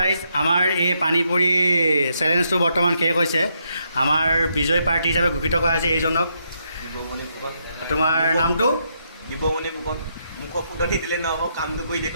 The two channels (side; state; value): both; inverted; correlation -0.78